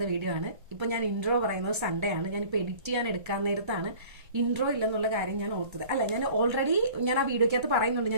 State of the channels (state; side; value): late; left; 1.3 ms